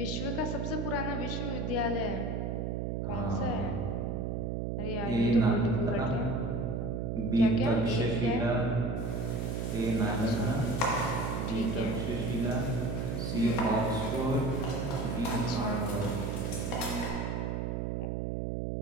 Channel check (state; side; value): noise; right; hum, 1 dB below the sound